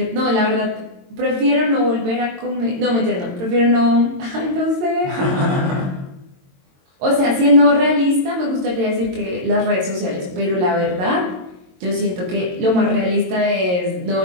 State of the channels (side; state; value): left; late; 22 ms